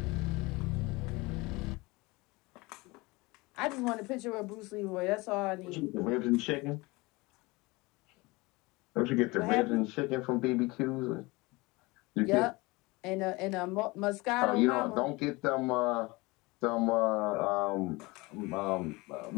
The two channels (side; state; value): right; quieter; 23.7 dB